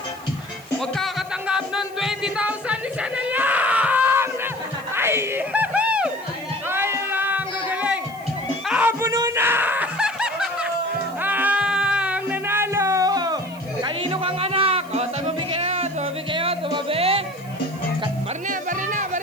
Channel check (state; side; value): noise; right; hiss, 23 dB below the sound